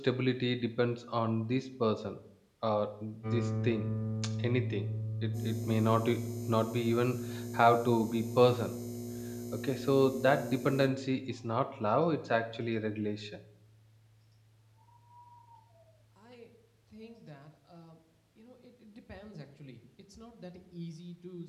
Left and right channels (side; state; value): both; identical; correlation 1.00